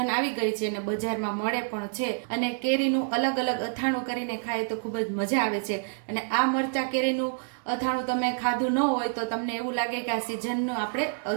આવી ગઈ છે અને બજારમાં મળે પણ છે, અને કેરીનું અલગ અલગ અથાણું કરીને ખાય તો ખૂબ જ મજા આવે છે। અને આ મરચાં કેરીનું અથાણું તમે ખાધું ન હોય તો તમને એવું લાગે કે આ સિઝનનું આપણે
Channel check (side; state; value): left; silent; digital silence